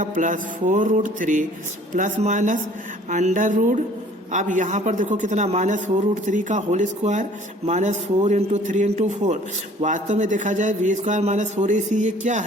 +4√3 प्लस माइनस अंडर रूट। अब यहाँ पर देखो कितना -4√3 का होल स्क्वायर -4 × 3 × 4। वास्तव में देखा जाए v² - 4ac ये क्या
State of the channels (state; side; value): normal; both; correlation 0.53